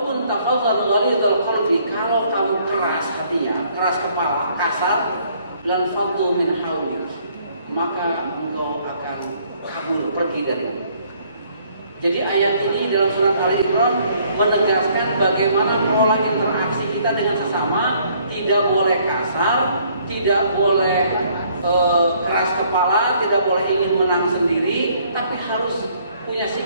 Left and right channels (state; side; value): inverted; both; correlation -0.63